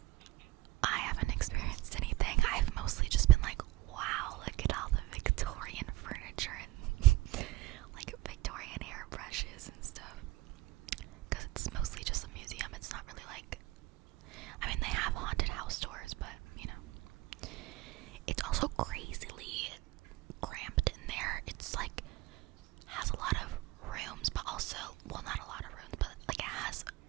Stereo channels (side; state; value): left; quieter; 17.9 dB